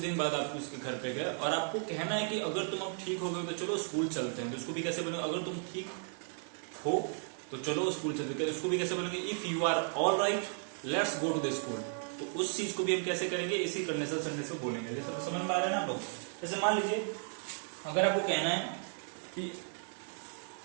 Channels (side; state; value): left; silent; 55 dB below the other